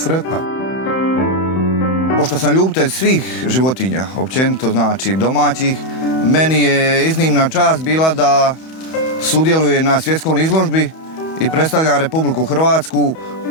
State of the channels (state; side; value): late; right; 31 ms